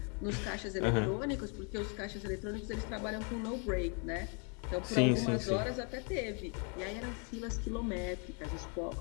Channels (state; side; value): quieter; right; 37.6 dB